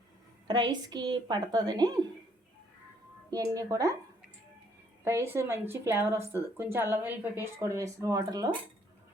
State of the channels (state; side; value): normal; both; correlation 0.66